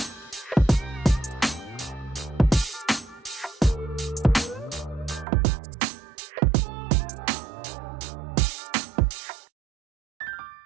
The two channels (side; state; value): left; drops out; at 5.2 s